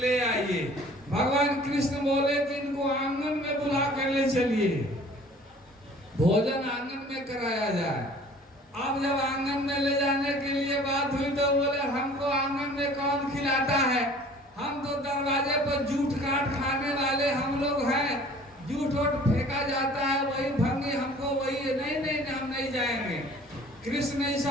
आइए। भगवान कृष्ण बोले कि इनको आंगन में बुला कर ले चलिए, भोजन आंगन में कराया जाए। अब जब आंगन में ले जाने के लिए बात हुई तो बोले हमको आंगन में कौन खिलाता है, हम तो दरवाजे पर जूठ काट खाने वाले हम लोग हैं, जूठ वोट फेंका जाता है वही भंगी हमको वही। नहीं नहीं हम नहीं जाएंगे। कृष्ण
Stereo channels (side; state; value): both; normal; correlation 0.50